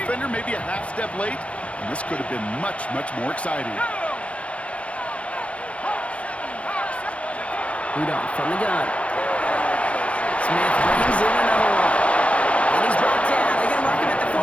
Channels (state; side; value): late; right; 0.063 ms